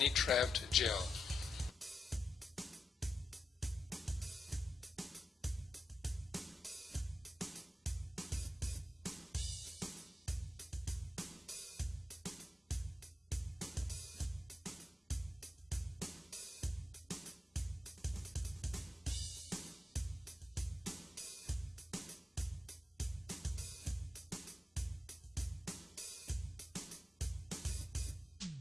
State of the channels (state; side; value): normal; both; correlation 0.87